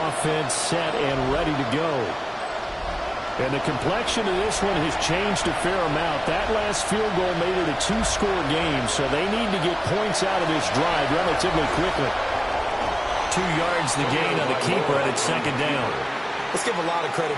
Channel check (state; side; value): identical; both; correlation 1.00